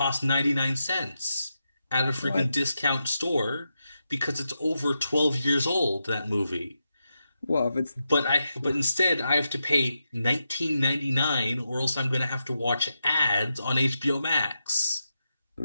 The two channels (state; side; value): inverted; both; correlation -0.87